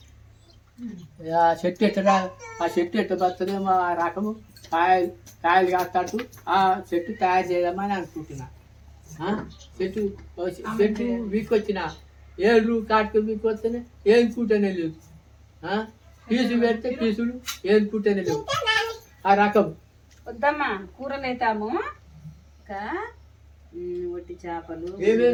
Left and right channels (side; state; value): both; identical; correlation 1.00